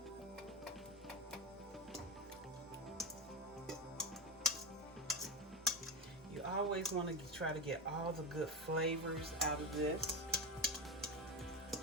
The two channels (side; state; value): both; normal; correlation 0.19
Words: You always want to try to get all the good flavors out of this.